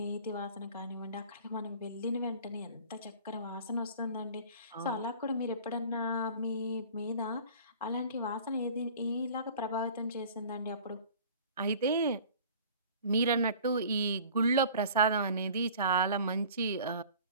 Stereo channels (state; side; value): inverted; both; correlation -0.46